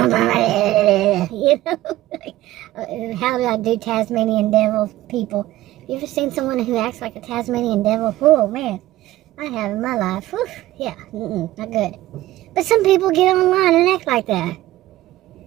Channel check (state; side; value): quieter; left; 15.8 dB